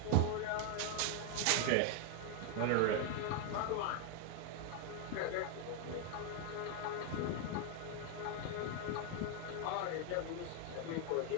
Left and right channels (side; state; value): both; different; correlation 0.00